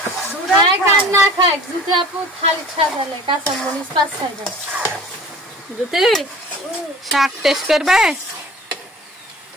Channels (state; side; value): normal; both; correlation 0.44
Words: না খায় জ্যোতি আপু খালি খাবে কাঁচা মরিচ 5-6 টা জ্যোতি শাক টেস্ট করবে